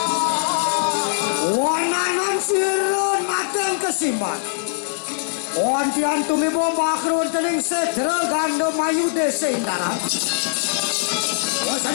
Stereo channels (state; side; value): silent; right; digital silence